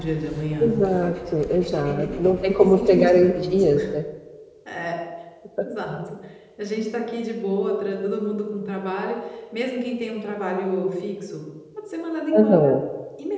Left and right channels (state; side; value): identical; both; correlation 1.00